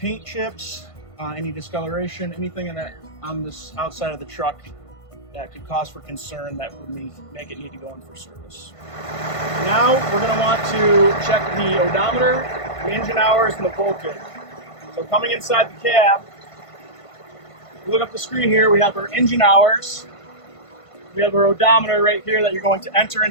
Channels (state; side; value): late; right; 1.5 ms